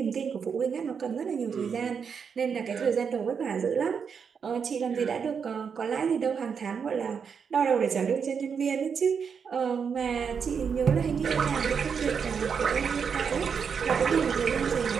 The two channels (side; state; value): left; quieter; 6.5 dB